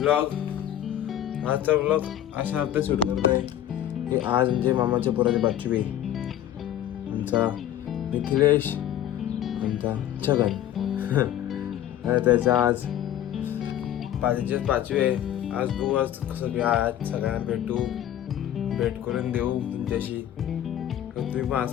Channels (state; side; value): quieter; right; 11.6 dB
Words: आजचा ब्लॉग अशा हप्ते शूट करत आहे की आज म्हणजे मामाच्या पोराची पाचवी आहे. आमचा मिथिलेश आमचा छगन त्याचा आज पाचवी आहे. आज तू आज कसं की आज सगळ्यांना भेट करून देऊ तुमच्याशी. तुम्ही पण